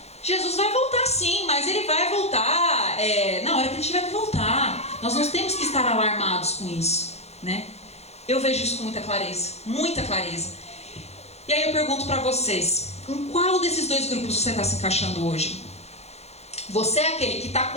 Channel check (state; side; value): late; right; 0.31 ms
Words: Jesus vai voltar sim, mas ele vai voltar na hora que ele tiver que voltar. Nós não temos que estar alarmados com isso, né? Eu vejo isso com muita clareza, muita clareza. E aí eu pergunto para vocês, em qual desses 2 grupos você está se encaixando hoje? Você é aquele que está